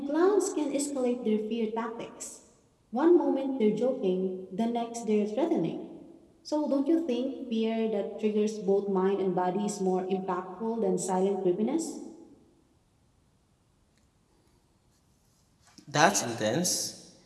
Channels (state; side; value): identical; both; correlation 1.00